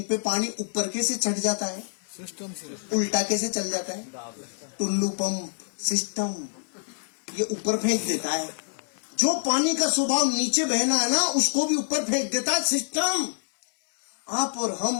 पे पानी ऊपर कैसे चढ़ जाता है? सिस्टम से। उल्टा कैसे चल जाता है? टुल्लू पंप सिस्टम, ये ऊपर फेंक देता है। जो पानी का स्वभाव नीचे बहना है ना, उसको भी ऊपर फेंक देता है सिस्टम। आप और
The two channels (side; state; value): right; silent; 61 dB below the other